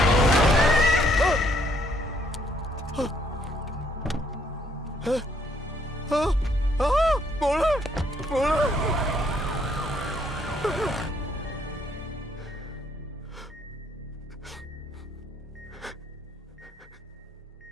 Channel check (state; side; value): normal; both; correlation 0.68